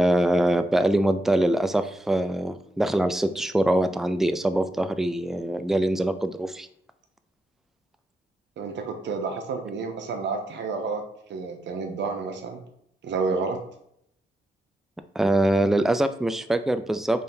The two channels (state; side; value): normal; both; correlation 0.85